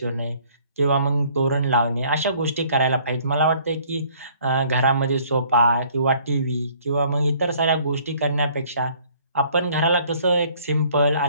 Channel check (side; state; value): both; inverted; correlation -0.58